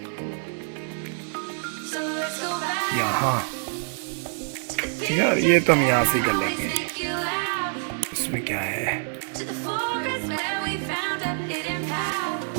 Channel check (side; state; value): left; silent; digital silence